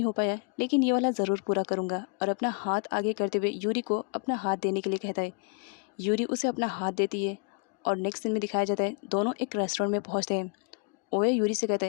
हो पाया लेकिन ये वाला ज़रूर पूरा करूँगा। और अपना हाथ आगे करते हुए यूरी को अपना हाथ देने के लिए कहता है। यूरी उसे अपना हाथ देती है और नेक्स्ट सीन में दिखाया जाता है दोनों एक रेस्टोरेंट में पहुँचते हैं। ओया यूरी से कहता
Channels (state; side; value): quieter; right; 35.1 dB